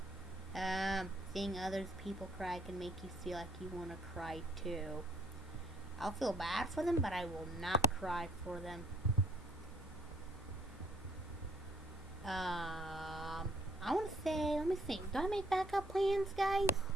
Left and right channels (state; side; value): normal; both; correlation 0.63